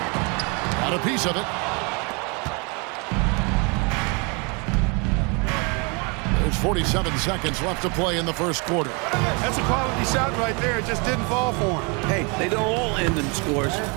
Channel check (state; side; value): quieter; left; 31.8 dB